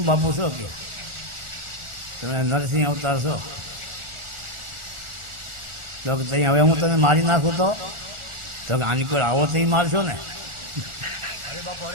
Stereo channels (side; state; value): left; late; 1.4 ms